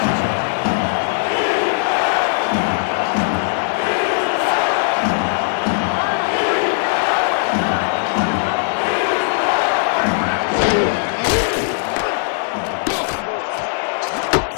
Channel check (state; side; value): silent; right; digital silence